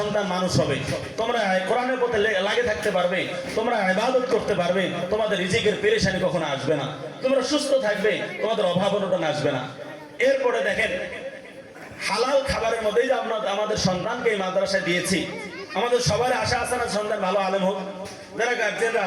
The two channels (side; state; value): both; identical; correlation 1.00